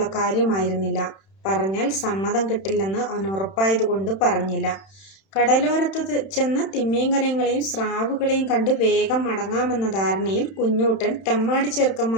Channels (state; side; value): late; right; 31 ms